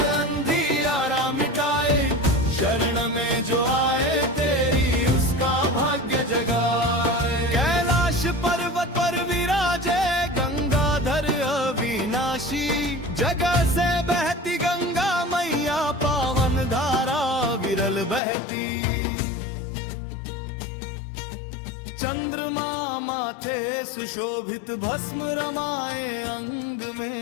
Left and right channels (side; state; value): right; drops out; at 18.2 s